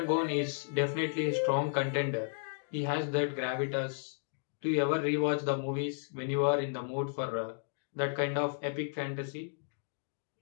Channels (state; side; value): silent; right; digital silence